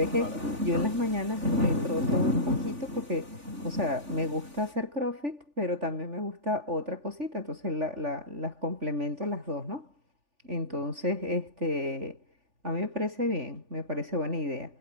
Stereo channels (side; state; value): left; late; 3.4 ms